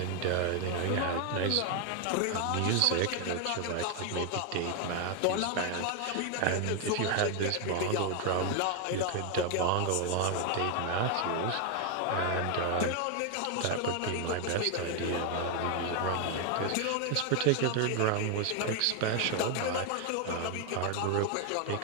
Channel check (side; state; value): both; different; correlation 0.01